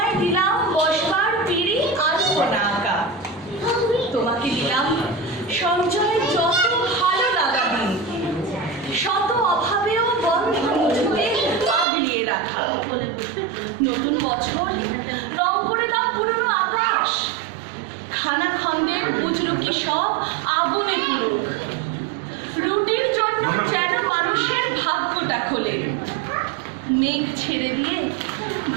দিলাম বসবার পিড়ি আলপনা আঁকা, তোমাকে দিলাম সঞ্চয়ের যত ভালো লাগা দিন, শত অভাবেও বন্ধন মুঠোতে আগলিয়ে রাখা। নতুন বছর, রং করে দাও পুরনো আকাশ, খানা খন্দের বুজরুকি সব আগুনে পুরুক, রুটির জন্য যেন মানুষের ভাগ্যটা খোলে, মেঘ ছেড়ে দিয়ে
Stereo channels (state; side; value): drops out; left; at 11.9 s